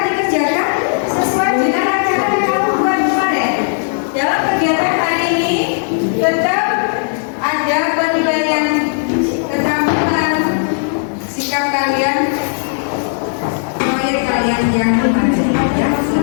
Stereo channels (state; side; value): silent; right; digital silence